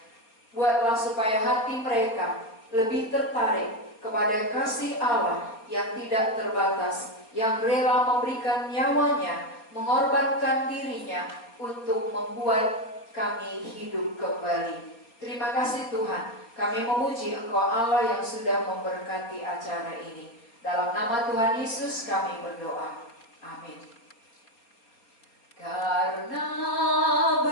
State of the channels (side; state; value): right; late; 4.3 ms